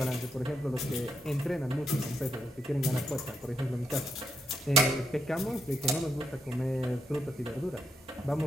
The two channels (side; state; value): both; normal; correlation 0.80